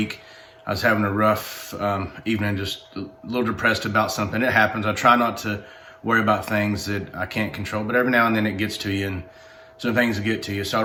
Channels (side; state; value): both; identical; correlation 1.00